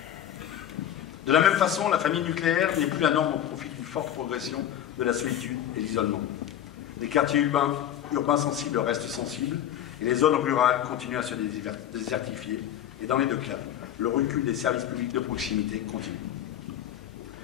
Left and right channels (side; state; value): right; quieter; 10.9 dB